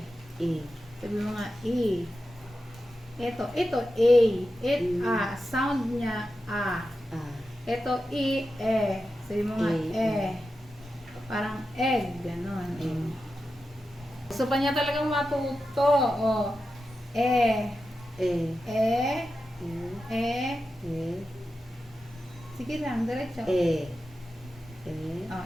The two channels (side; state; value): both; normal; correlation 0.91